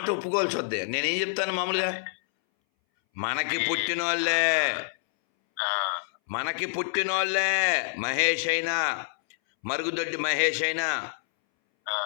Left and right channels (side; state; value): right; silent; 60 dB below the other